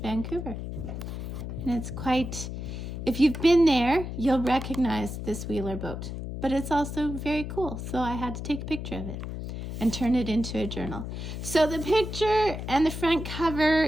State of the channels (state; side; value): noise; left; hum, 6 dB below the sound